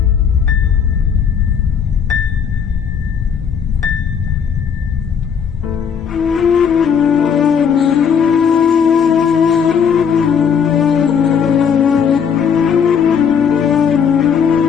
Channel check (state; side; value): quieter; right; 7.2 dB